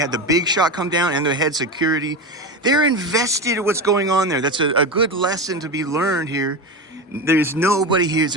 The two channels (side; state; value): both; normal; correlation 0.21